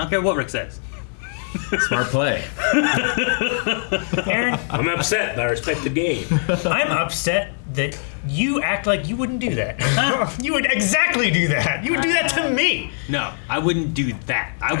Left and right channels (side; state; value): right; silent; 61 dB below the other